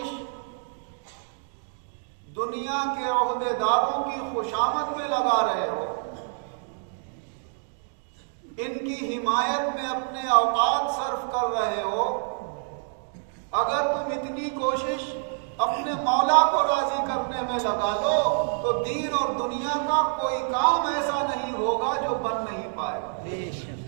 دنیا کے عہدے داروں کی خوشامد میں لگا رہے ہو، ان کی حمایت میں اپنے اوقات صرف کر رہے ہو، اگر تم اتنی کوشش اپنے مولا کو راضی کرنے میں لگا لو تو دین اور دنیا کا کوئی کام ایسا نہیں ہوگا جو بن نہیں پائے گا۔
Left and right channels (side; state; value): left; silent; digital silence